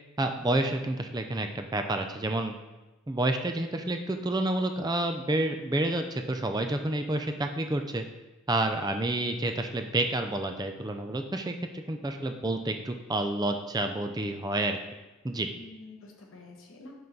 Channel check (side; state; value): both; normal; correlation 0.57